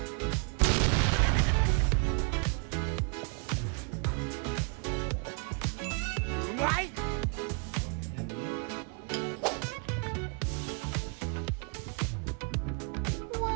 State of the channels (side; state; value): left; quieter; 37.4 dB